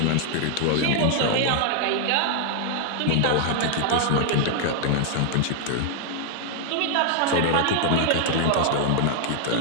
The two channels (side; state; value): both; different; correlation 0.00